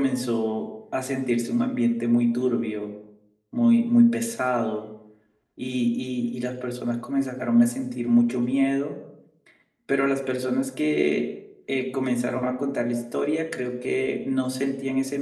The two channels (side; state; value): both; identical; correlation 1.00